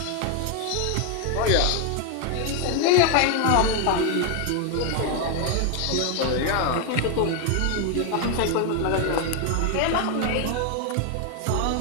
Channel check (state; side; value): different; both; correlation 0.01